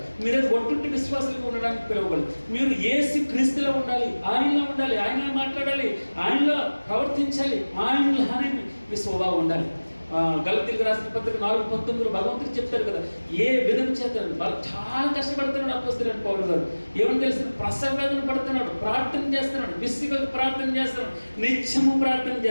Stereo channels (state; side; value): inverted; both; correlation -1.00